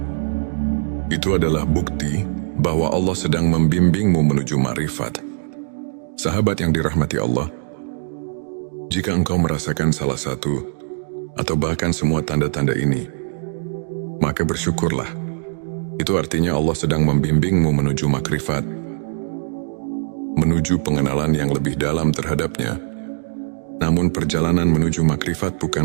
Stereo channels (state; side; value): silent; left; digital silence